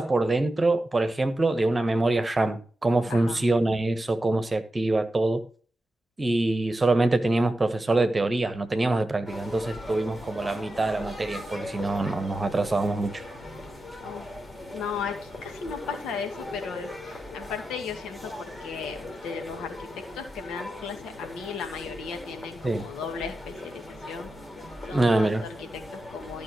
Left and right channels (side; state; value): both; normal; correlation 0.90